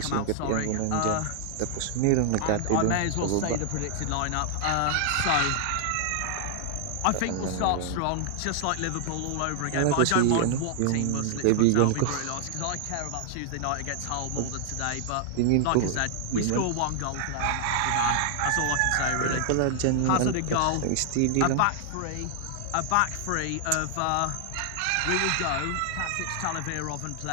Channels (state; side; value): different; both; correlation 0.00